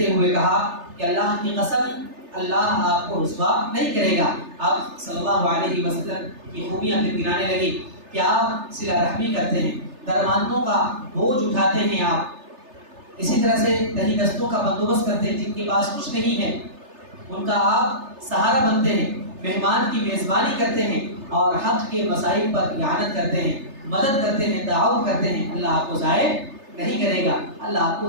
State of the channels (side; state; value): left; late; 3.3 ms